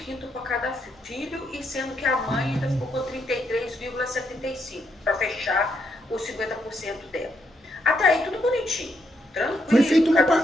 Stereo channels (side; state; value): both; normal; correlation 0.77